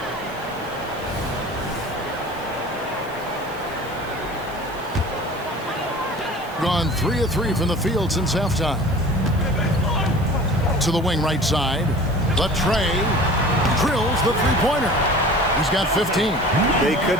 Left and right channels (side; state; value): right; noise; hiss, 23 dB below the sound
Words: Gone 3 of 3 from the field since halftime. To the wing right side. Latrey drills the three-pointer. He's got 15. They